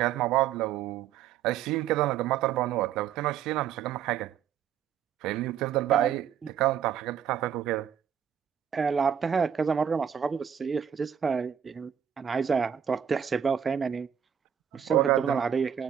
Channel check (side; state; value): left; quieter; 8.7 dB